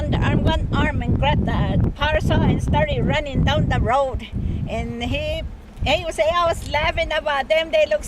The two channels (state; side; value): identical; both; correlation 1.00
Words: one arm and grabbed the parasol and started running down the road. And he would say, I was laughing about them. They look